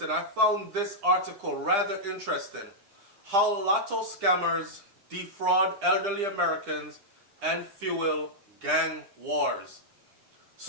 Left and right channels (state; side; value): late; left; 10 ms